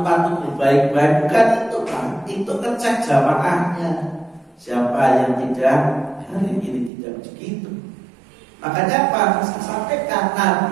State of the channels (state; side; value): drops out; left; at 6.9 s